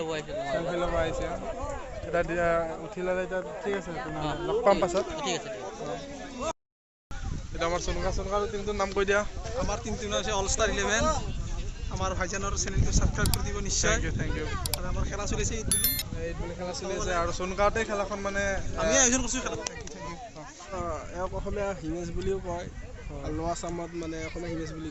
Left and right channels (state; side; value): identical; both; correlation 1.00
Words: ল'ব আহিছে এতিয়া উঠি ল'লে এতিয়া ঠিক আছে লগ পাম পাছত ঠিক আছে এটা আমাৰ সোনকা টিমটোৰ নাম কৈ দিয়া আমাৰ টিমটোৰ নাম হৈছে অল ষ্টাৰ 11 আমাৰ ভাইজানৰ চেনেলটো ছাবস্ক্ৰাইব কৰি দিব নিশ্চয় থেংক ইউ আৰু আমাৰ খেলা চলিছে ঈদ বুলি খেলা চলি আছে আৰু সোনকাতে খেলাখন মানে আমি আয়োজন কৰিছোঁ খেলা এওক অসমীয়া হিমেশ বুলিও কয় লোৱা আছামত মানে অসমীয়া হিমেশ বুলি